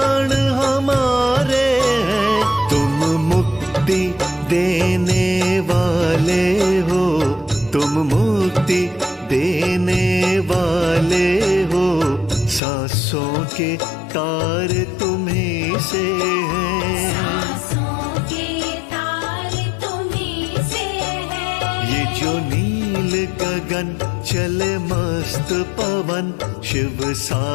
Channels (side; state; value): right; drops out; at 12.6 s